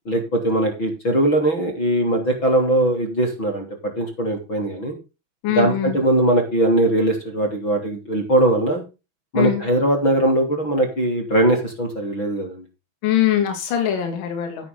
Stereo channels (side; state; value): right; late; 6.1 ms